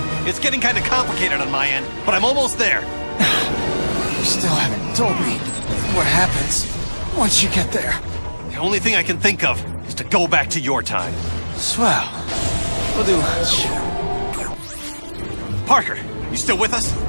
It's getting kind of complicated on my end, but I'm almost there. You still haven't told me what happens once you get there. The only thing I can think of is to go back to your time. Swell. We'll do lunch. Parker, you still with us?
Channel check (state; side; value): inverted; both; correlation -1.00